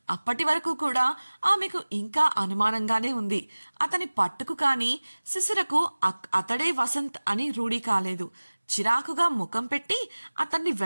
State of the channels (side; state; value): both; inverted; correlation -1.00